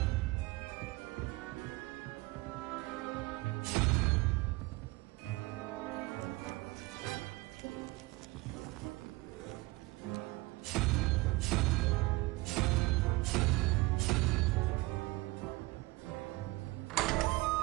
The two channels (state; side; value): quieter; left; 22.0 dB